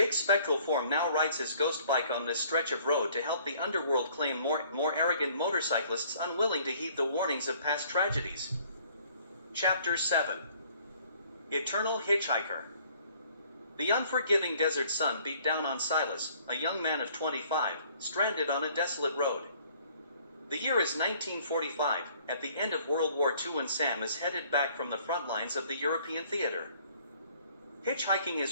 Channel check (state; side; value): inverted; both; correlation -0.58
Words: spectral form now rides his ghost bike on this stretch of road to help the underworld claim more arrogant motorcyclists unwilling to heed the warnings of past tragedies. Chapter 7. Eternal Hitchhiker. The unforgiving desert sun beat down on Silas, a young man of 25, stranded on a desolate road. The year is 1945, at the end of World War II, and Sam is headed back from the front lines of the European theater. Hitchhiking